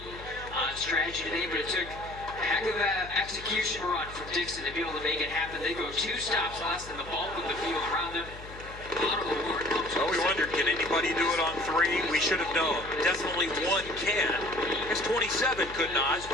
on strategy today, but it took a heck of an execution run from Dixon to be able to make it happen. They go 2 stops less than the bulk of the field around them. Oh, we wondered, can anybody do it on 3? We should have known. Definitely 1 can. I guess 27 could not,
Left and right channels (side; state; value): left; noise; hum, 15 dB below the sound